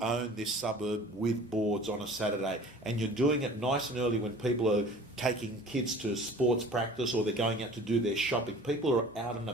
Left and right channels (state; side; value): normal; both; correlation 0.45